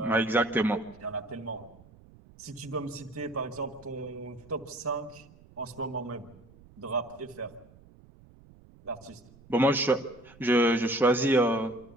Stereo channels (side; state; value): right; noise; rumble, 24 dB below the sound